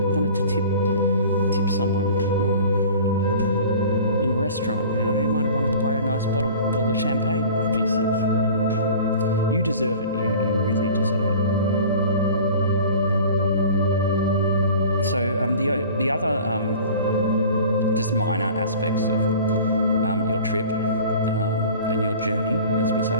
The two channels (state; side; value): inverted; both; correlation -0.43